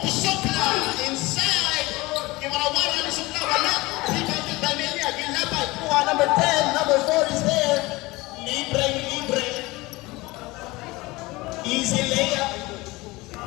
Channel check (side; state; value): right; quieter; 21.6 dB